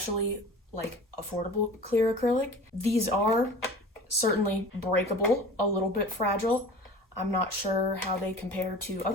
like affordable clear acrylic. These are certainly breakable, a little bit fragile. I'm not sure how they compare to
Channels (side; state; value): both; normal; correlation 0.39